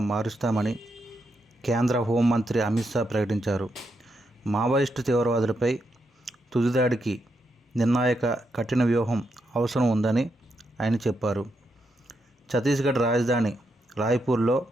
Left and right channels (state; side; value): normal; both; correlation 0.82